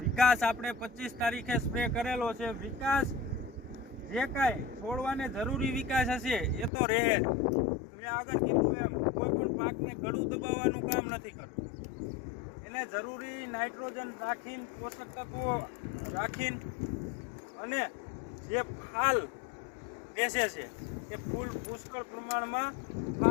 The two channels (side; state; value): right; drops out; at 6.7 s